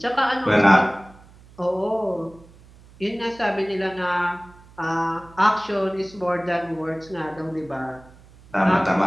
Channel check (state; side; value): noise; right; hum, 24 dB below the sound